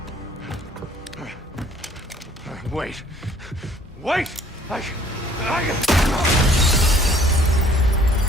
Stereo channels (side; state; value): both; normal; correlation 0.57